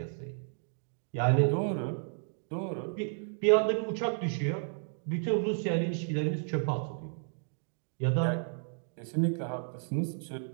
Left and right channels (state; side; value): silent; left; digital silence